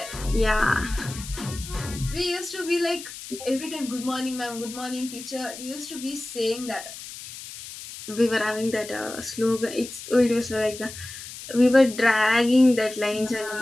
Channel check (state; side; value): noise; left; hiss, 12 dB below the sound